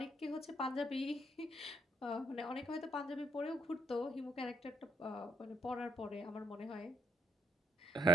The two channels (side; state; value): both; normal; correlation 0.73